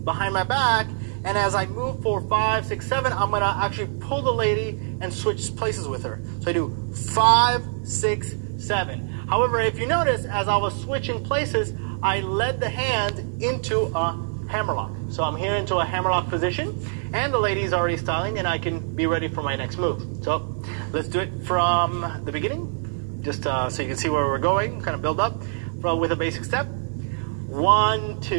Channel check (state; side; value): silent; left; 62 dB below the other